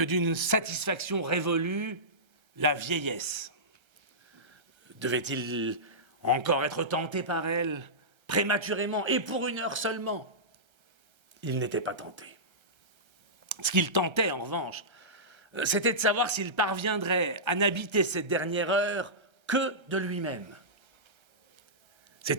d'une satisfaction révolue, la vieillesse. Devait-il encore être tenté par elle, prématurément, et pour 1 heure seulement? Il n'était pas tenté. Ce qu'il tentait, en revanche, c'était de savoir s'il parviendrait à n'habiter cette dernière heure que de lui-même.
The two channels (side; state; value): left; late; 1.3 ms